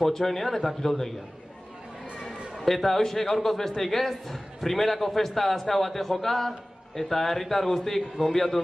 eta Kiroldegian. Eta hoxe, gaurkoz besteik ez, primerako festa azkau bate joka, eta herritar guztik gonbiatu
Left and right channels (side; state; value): both; normal; correlation 0.98